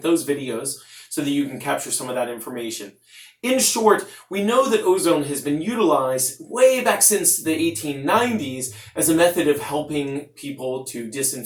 those videos so that you can capture some of that information. In short, we know that ozone has been utilized way back since the 1890s as a method of helping people to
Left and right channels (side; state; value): both; identical; correlation 1.00